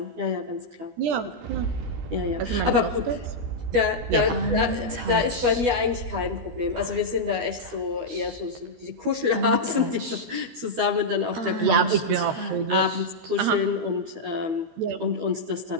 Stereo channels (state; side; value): late; left; 12 ms